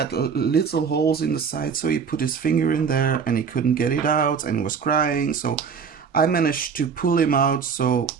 little holes in the side, so he put his finger in there and he couldn't get it out and he was crying. So I managed to pull him out so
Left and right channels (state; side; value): quieter; left; 6.2 dB